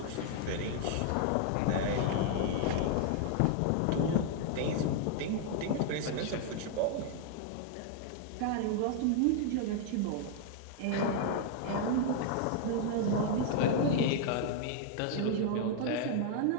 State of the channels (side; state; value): both; different; correlation 0.00